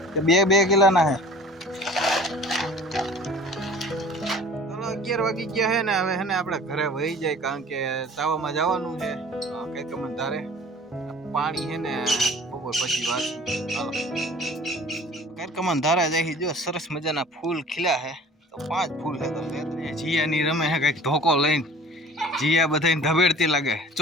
કે 2 કિલોના છે ચાલો 11 વાગી ગયા છે ને હવે હે ને આપણે ઘરે વહી જાય કારણ કે તાવામાં જવાનું છે કઈક મને ધારે પાણી છે ને બપોર પછી વાંચું ચાલો કઈક મને ધારે જાય જો સરસ મજાના ફૂલ ખીલ્યા છે તો 5 ફૂલ છે તો જીયાની રમે છે કઈક ધોકો લઈને જીયા બધાને ધબેડતી લાગે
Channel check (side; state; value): both; normal; correlation 0.46